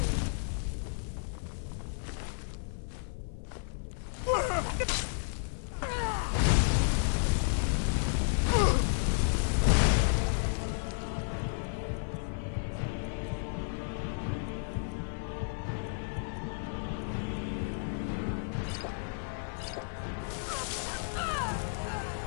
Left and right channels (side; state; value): right; silent; 56 dB below the other